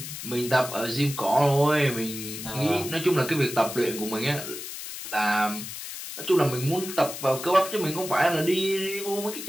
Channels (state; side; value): noise; left; hiss, 9 dB below the sound